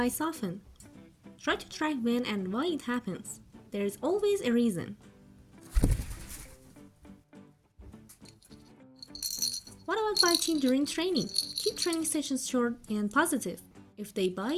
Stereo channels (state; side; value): identical; both; correlation 1.00